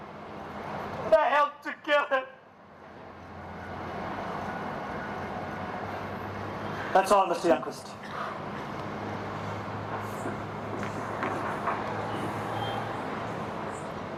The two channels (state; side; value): identical; both; correlation 1.00